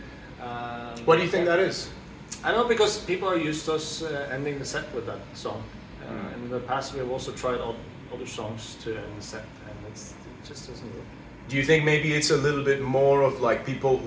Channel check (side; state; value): both; identical; correlation 1.00